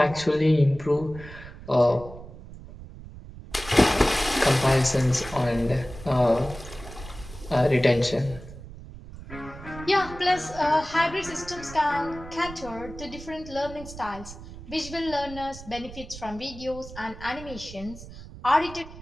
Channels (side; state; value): right; noise; rumble, 15 dB below the sound